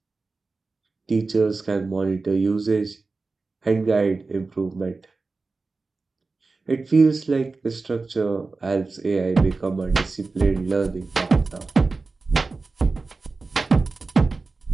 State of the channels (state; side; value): quieter; left; 3.8 dB